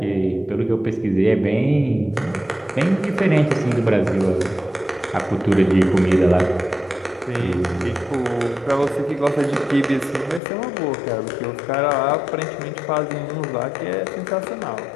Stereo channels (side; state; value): right; drops out; at 10.4 s